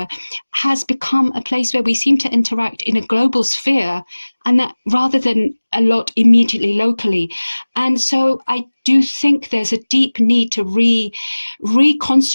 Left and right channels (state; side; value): inverted; both; correlation -1.00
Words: has become a place where we seem to interact in a global sphere, and that rather than a lot immediately locally. And so I do think there's a deep need to